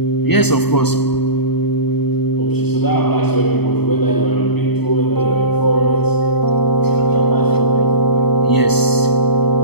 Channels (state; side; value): late; right; 0.97 ms